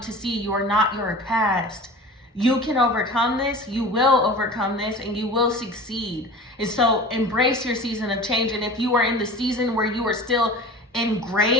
see. You are not your past. You can overcome this. You will overcome this, and you will succeed. And so embrace your season of change. And if you are in the season where you are still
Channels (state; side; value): normal; both; correlation 0.37